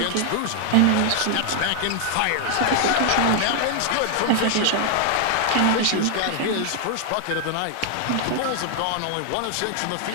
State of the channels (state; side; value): different; both; correlation 0.00